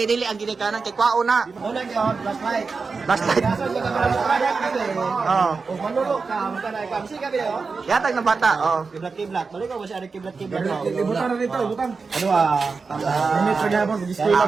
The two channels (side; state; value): left; quieter; 4.6 dB